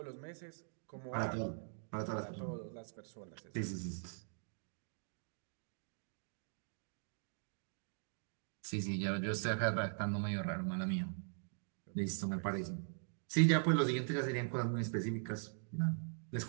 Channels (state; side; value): silent; left; digital silence